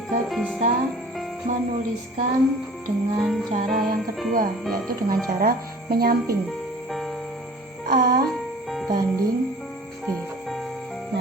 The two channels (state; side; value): normal; both; correlation 0.46